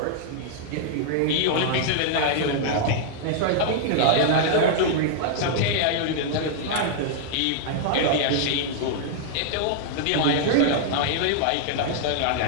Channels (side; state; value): both; different; correlation -0.01